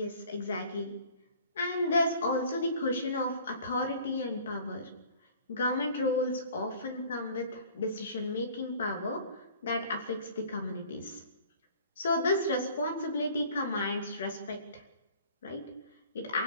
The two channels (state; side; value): inverted; both; correlation -0.50